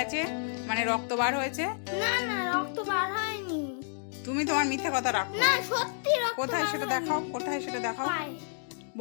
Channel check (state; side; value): silent; right; digital silence